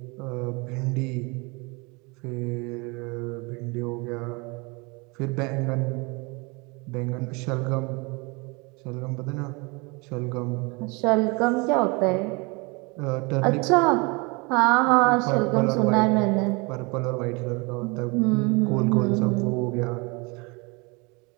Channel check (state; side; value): quieter; left; 28.3 dB